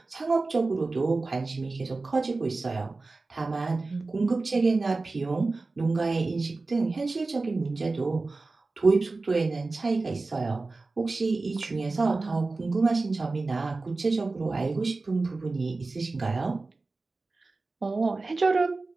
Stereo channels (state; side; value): quieter; left; 3.6 dB